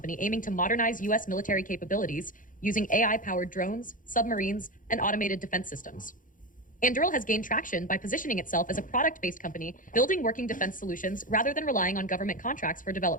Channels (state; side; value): late; right; 0.39 ms